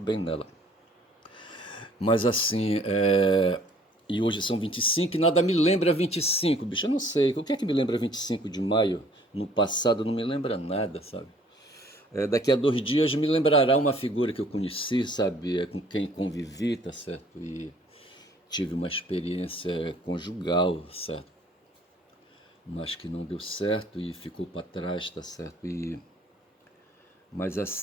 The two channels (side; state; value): both; normal; correlation 0.57